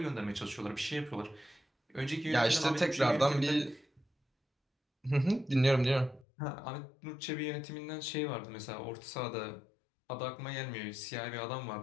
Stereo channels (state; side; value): drops out; right; at 6.2 s